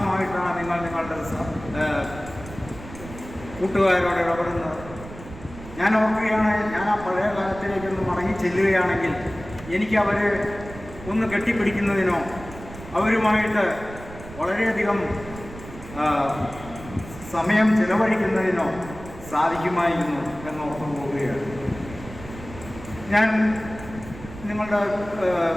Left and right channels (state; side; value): noise; right; rumble, 14 dB below the sound